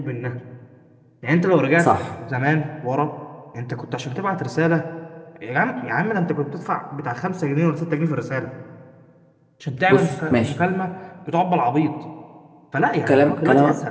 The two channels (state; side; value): identical; both; correlation 1.00